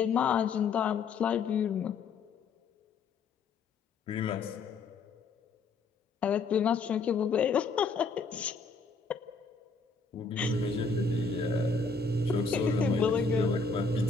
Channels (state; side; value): quieter; right; 4.4 dB